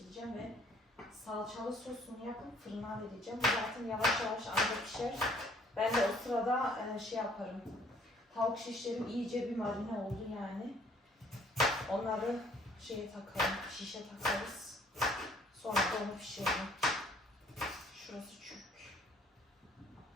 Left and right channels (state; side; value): normal; both; correlation 0.60